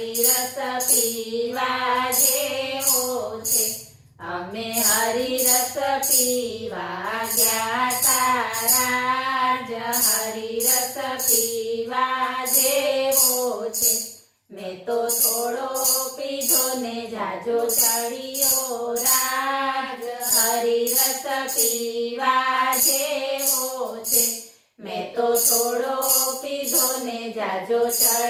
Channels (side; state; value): both; identical; correlation 1.00